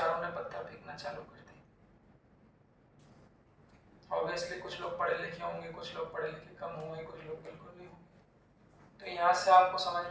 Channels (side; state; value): both; identical; correlation 1.00